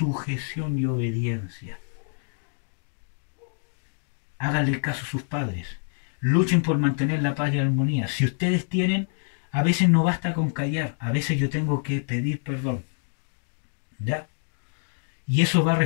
y obediencia. Háganle caso a sus padres. Luchen por mantener la paz y la armonía. Si ustedes tienen, a veces no basta con callar. A veces yo tengo que pedir perdón. ¿Ya? Y eso va a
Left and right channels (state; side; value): silent; right; digital silence